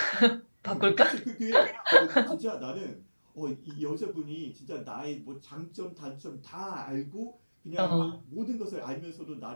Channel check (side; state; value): both; inverted; correlation -1.00